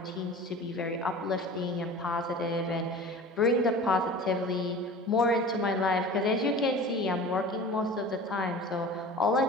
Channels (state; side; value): normal; both; correlation 0.39